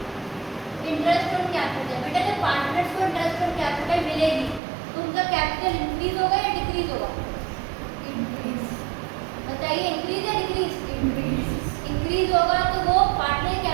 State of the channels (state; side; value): drops out; left; at 4.6 s